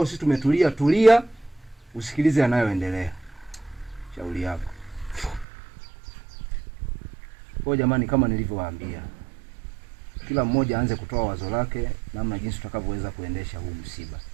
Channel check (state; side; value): drops out; left; at 5.5 s